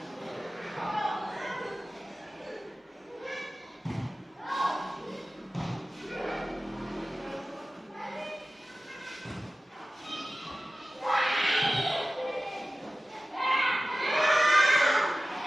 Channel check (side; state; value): both; normal; correlation 0.95